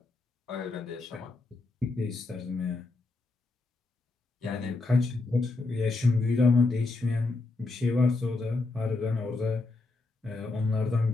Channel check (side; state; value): right; quieter; 3.4 dB